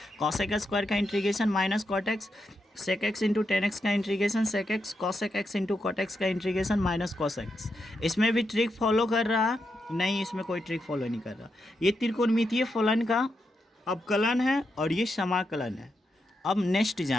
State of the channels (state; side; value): normal; both; correlation 0.84